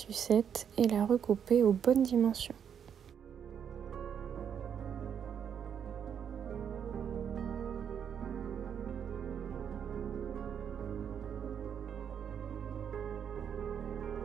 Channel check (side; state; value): left; quieter; 8.1 dB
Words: et la recouper aux bonnes dimensions.